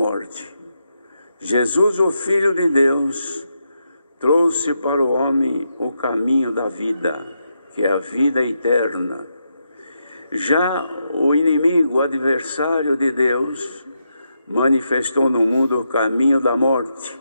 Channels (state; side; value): inverted; both; correlation -0.83